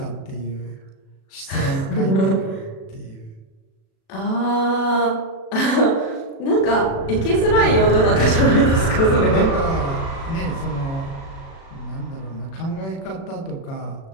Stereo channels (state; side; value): late; right; 36 ms